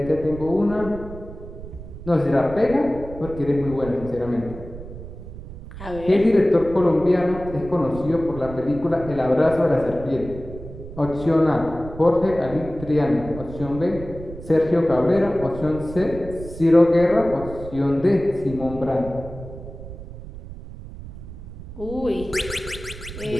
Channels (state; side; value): noise; right; rumble, 13 dB below the sound